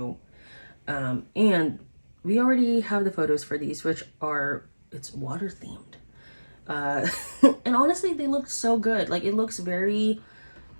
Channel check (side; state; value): both; inverted; correlation -1.00